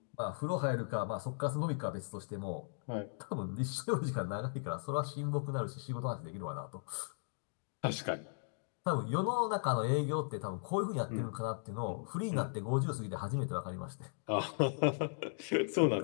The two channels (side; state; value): right; silent; digital silence